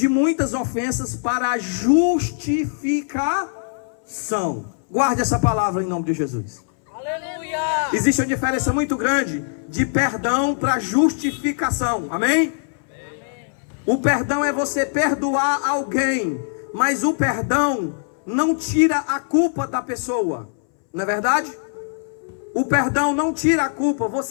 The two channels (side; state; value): right; silent; 64 dB below the other